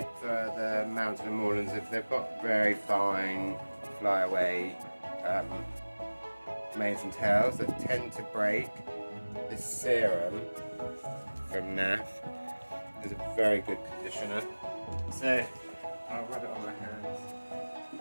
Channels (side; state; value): both; inverted; correlation -1.00